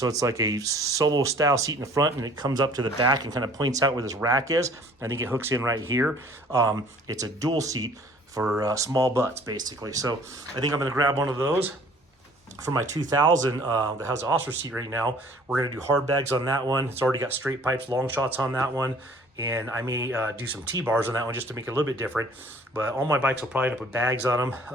it's like a solo style seat in the front, and it comes up to the back and kind of points out where this rack is. I think it hooks in right here. It's a dual seat for small butts, basically. So I think I'm going to grab one of those for my 2000 that has the Oscar seat right now. We're going to do hard bags on that one. It's already got straight pipes, long shots on that one. And I may do some T-bars on that one just to make it a little bit different. But all my bikes will probably end up with bags on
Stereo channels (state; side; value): normal; both; correlation 0.53